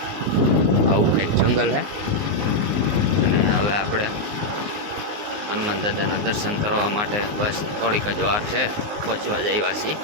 આવું કંઈક જંગલ છે. અને હવે આપણે હનુમાન દાદાના દર્શન કરવા માટે બસ થોડીક જ વાર છે, પહોંચવા જ આવ્યા છીએ.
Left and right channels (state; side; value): late; left; 19 ms